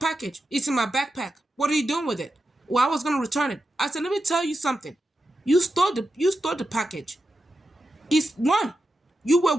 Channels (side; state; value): both; normal; correlation 0.89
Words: It's in my backpack. What are you doing with it? Well, I was going to return it. I said, let me tell you something. You stole the package. It's one, you